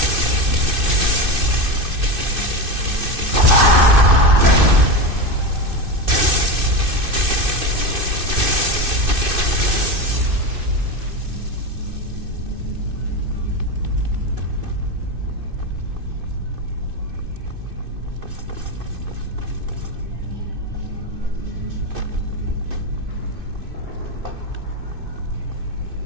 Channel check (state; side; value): late; left; 2.6 ms